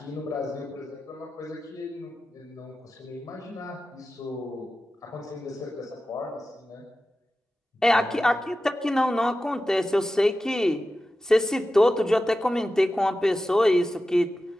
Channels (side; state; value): both; normal; correlation 0.93